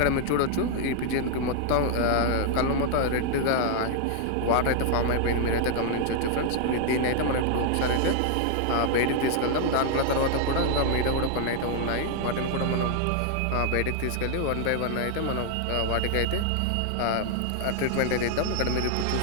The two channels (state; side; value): different; both; correlation 0.00